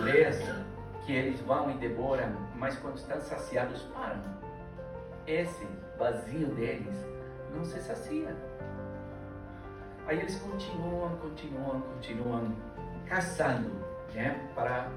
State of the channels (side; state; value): both; identical; correlation 1.00